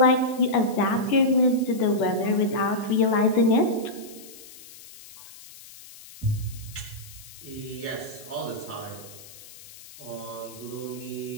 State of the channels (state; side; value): noise; left; hiss, 19 dB below the sound